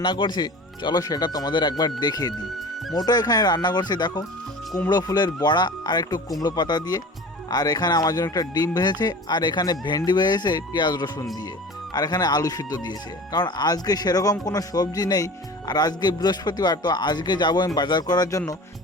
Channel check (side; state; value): both; normal; correlation 0.38